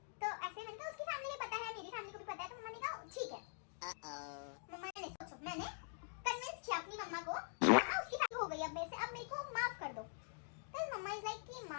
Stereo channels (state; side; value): silent; right; digital silence